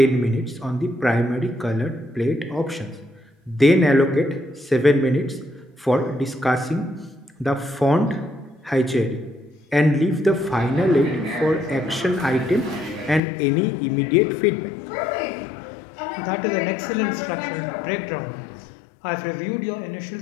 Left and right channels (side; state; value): right; drops out; at 13.2 s